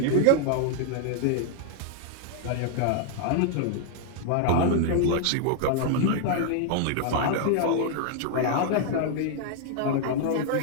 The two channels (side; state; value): both; different; correlation 0.00